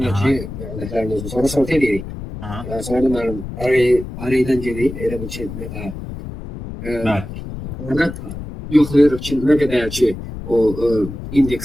de ki vectorlarımız sonra sort edirik. Aha. Yani sonra da benim array'den gelip elə bir şey mesela Bəli. orada yoxlayırıq ki ne kadar ki o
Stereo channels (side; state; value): left; noise; rumble, 9 dB below the sound